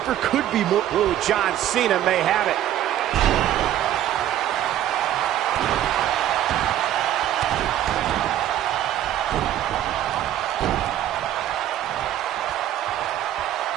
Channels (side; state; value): left; quieter; 11.9 dB